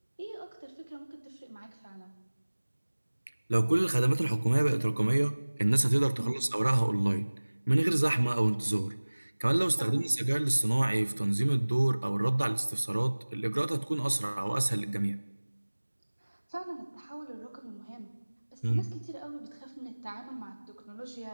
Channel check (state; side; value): inverted; both; correlation -1.00